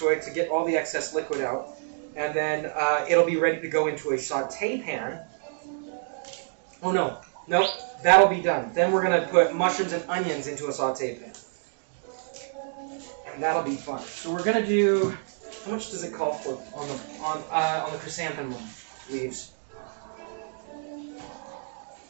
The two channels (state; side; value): silent; left; digital silence